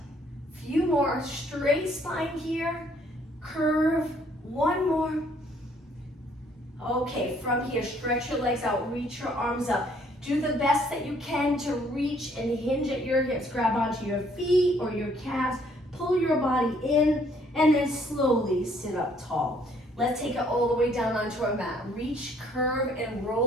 Few more, straight spine here, curve, 1 more. Okay, from here, stretch your legs out, reach your arms up. Do the best that you can to reach and hinge at your hips. Grab onto your feet or your calves, pull your body in, and then slowly sit up tall. Let's take it all the way down onto our mat. Reach, curve, and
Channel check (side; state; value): both; normal; correlation 0.64